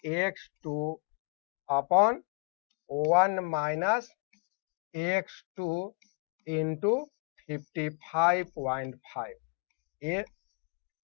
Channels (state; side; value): quieter; right; 39.1 dB